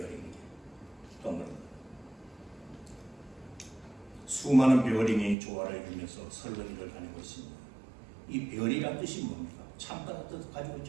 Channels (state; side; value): drops out; left; at 5.4 s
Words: 동그랗게 수많은 베어링이 조화를 이루면서 설렁이를 다니고 있습니다. 이 베어링이란 뜻이 뭡니까? 참다는 뜻을 가지고